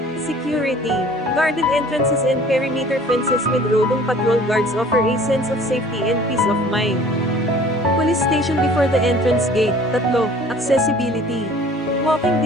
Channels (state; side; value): normal; both; correlation 0.50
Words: security. Guarded entrances and perimeter fences with roving patrol guards offer a sense of safety and peace of mind. Police station before the entrance gate. Tatlo, accessibility. Walking